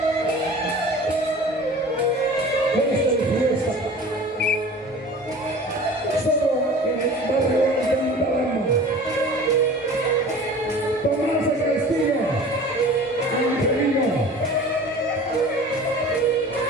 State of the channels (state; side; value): normal; both; correlation 0.41